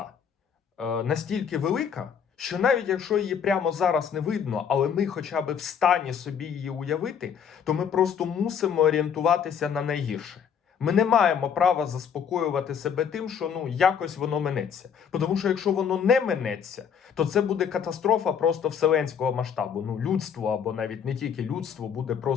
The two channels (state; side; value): quieter; right; 7.5 dB